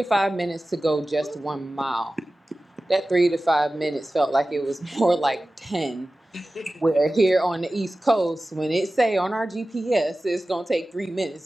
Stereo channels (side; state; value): both; normal; correlation 0.96